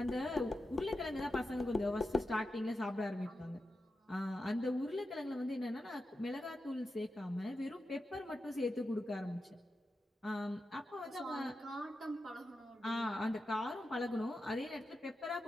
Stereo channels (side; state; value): both; normal; correlation 0.90